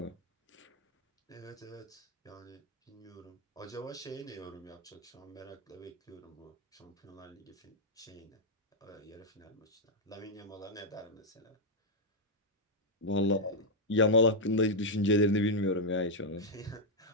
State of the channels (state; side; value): normal; both; correlation -0.03